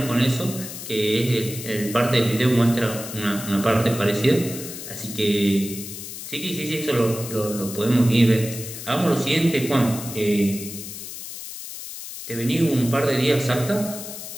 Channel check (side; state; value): left; noise; hiss, 10 dB below the sound